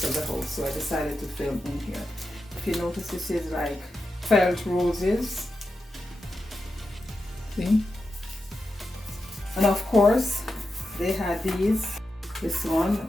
of the house, so I decided to film in here. If you notice, this is like felt roses. See? And of course, they had this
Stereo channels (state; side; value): normal; both; correlation 0.89